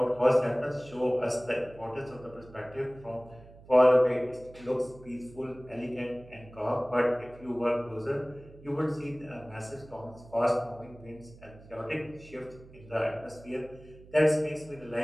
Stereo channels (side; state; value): right; noise; hum, 21 dB below the sound